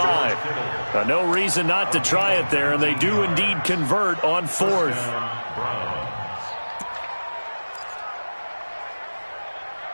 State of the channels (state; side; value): inverted; both; correlation -1.00